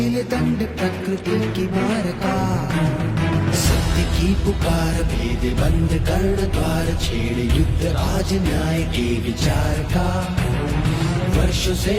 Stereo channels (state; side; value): identical; both; correlation 1.00